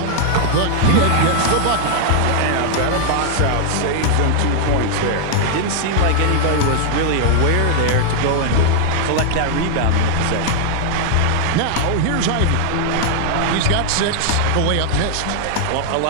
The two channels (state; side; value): different; both; correlation -0.01